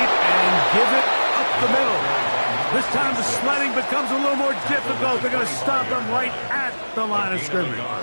and give it up the middle. This time the sledding becomes a little more difficult. They're going to stop him right at the line of scrimmage.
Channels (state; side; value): inverted; both; correlation -1.00